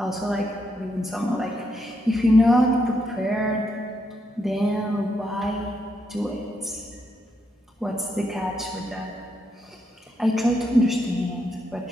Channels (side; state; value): both; normal; correlation 0.79